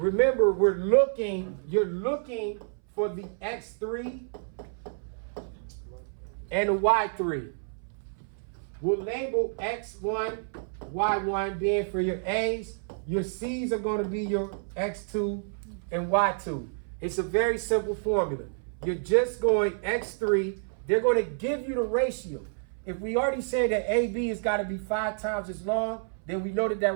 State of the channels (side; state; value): left; silent; 59 dB below the other